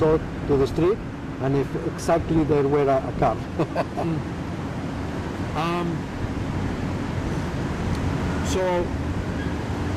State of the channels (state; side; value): identical; both; correlation 1.00